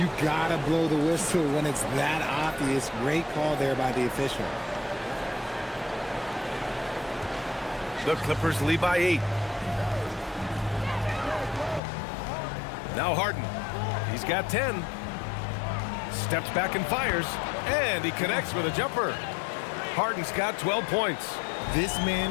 gotta blow the whistle when it's that obvious. Great call there by the official. The Clippers lead by 8. Now Harden. He's got 10. Steps back and fires. And he connects with a jumper. Harden's got 12 points. This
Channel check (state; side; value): drops out; right; at 11.8 s